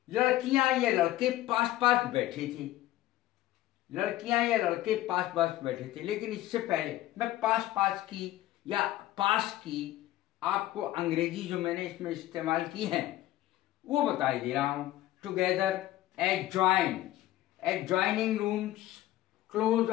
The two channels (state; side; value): quieter; right; 15.1 dB